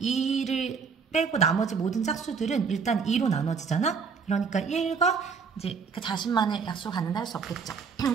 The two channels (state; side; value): quieter; left; 5.6 dB